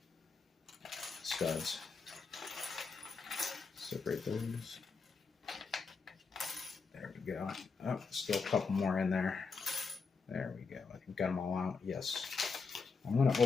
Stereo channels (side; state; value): right; quieter; 4.8 dB